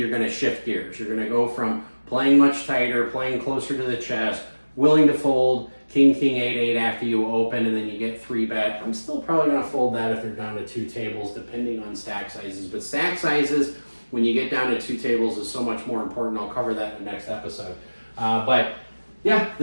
going to shift gears. You're going to go from playing much tighter, playing closer to the chest, willing to fold king, king, 8, 8 after you open, and then you get 3-bet. I'm still probably going to fold that if they're down to 2 tables, depending on stack sizes. But stack sizes, when you get down to 2 tables, is so much more important. I'll cover that in the next episode. But yeah,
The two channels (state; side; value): inverted; both; correlation -1.00